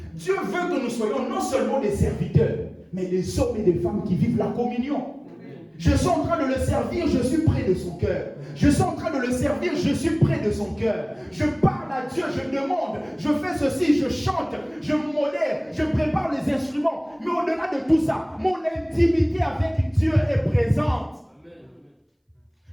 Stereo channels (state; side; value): identical; both; correlation 1.00